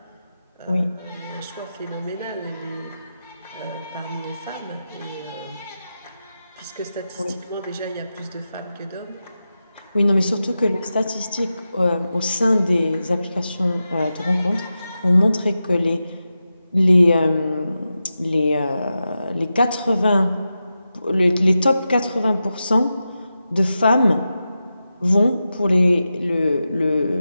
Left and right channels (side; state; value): both; inverted; correlation -0.91